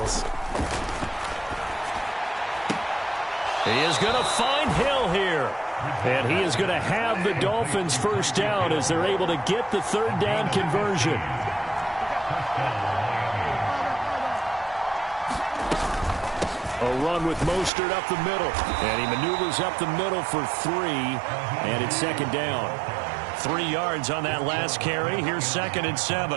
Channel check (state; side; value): drops out; left; at 17.7 s